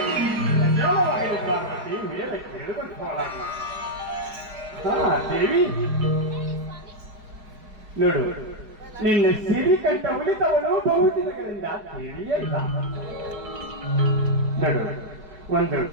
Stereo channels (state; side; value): late; left; 4.7 ms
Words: ಪಾರ್ವತಿ ಮೇಲೆ ಕೇಳಿಕೊಂಡು ಹೋಗಲಾಗ. ದೇವಿ ನೋಡು, ನಿನ್ನ ಸಿರಿಕಂಠ ಉಳಿತವಳು ಬಹುದಿನಗಳಿಂದ ತಿಳಿಯಲ್ಲ. ನೋಡು, ಒಂದು